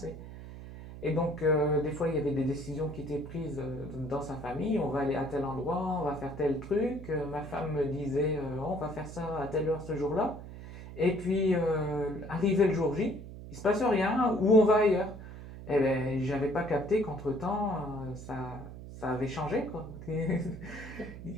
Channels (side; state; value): right; noise; hum, 13 dB below the sound